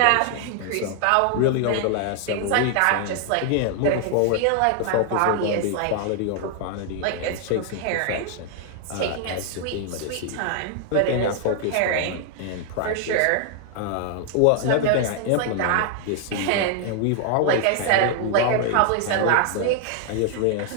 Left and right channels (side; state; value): both; different; correlation 0.00